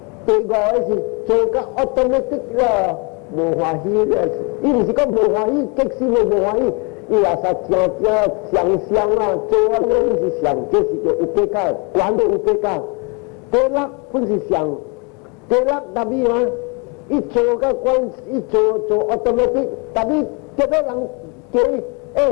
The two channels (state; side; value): quieter; right; 32.3 dB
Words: 第五个是做个 automatic 啦，无欢喜个，伊不是讲无欢喜，即使无欢喜，伊也是想啊，做啊，伊是想，这是叫有结果，玩到有结果。第六本是上，第六特别嘛，一做个关，一做automatic，特别这个人叫伊，